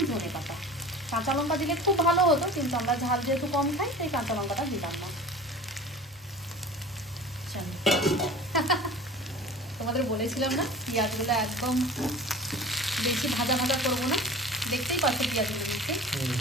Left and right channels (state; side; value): normal; both; correlation 0.39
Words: ধনে পাতা। কাঁচা লঙ্কা দিলে খুব ভালো হতো, কিন্তু আমরা ঝাল যেহেতু কম খাই তাই কাঁচা লঙ্কাটা দিলাম না। তোমাদের বলেছিলাম না পেঁয়াজগুলো একদম বেশি ভাজা ভাজা করবো না, দেখতেই পাচ্ছ পেঁয়াজগুলো দিচ্ছে।